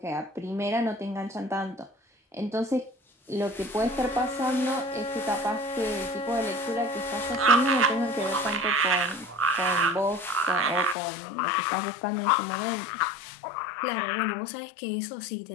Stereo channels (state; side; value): drops out; right; at 11.0 s